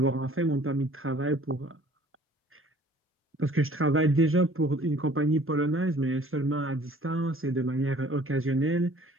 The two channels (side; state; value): both; normal; correlation 0.53